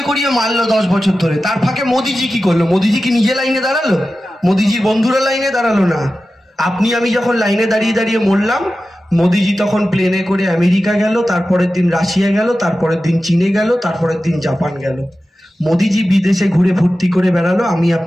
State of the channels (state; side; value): normal; both; correlation 0.94